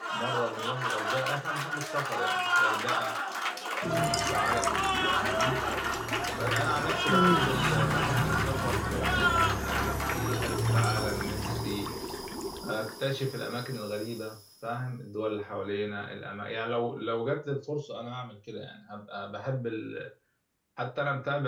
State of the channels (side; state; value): both; identical; correlation 1.00